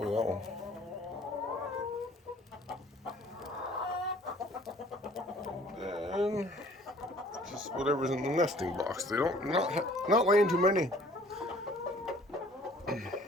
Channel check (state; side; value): normal; both; correlation 0.54